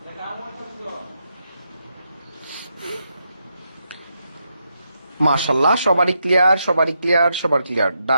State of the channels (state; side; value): inverted; both; correlation -0.82